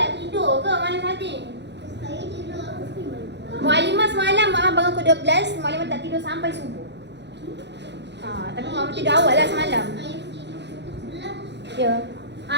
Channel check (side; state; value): left; late; 0.51 ms